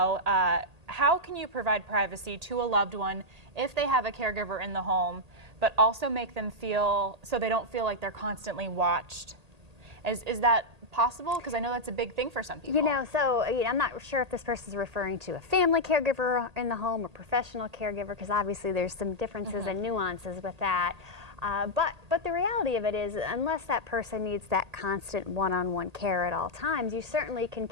how can you provide privacy to a loved one if they have a caregiver in the home, but also make them feel so they don't feel like they're constantly watched. Is that possible? Because I know that's a big thing for some people. You know, so I'm not sure if this person is referring to a family caregiver in the home or professional caregiver, because obviously there's some differences and nuances with that. But the reality of it is, unless that person needs that constant one-on-one care at all times, you certainly can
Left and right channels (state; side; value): late; left; 1.8 ms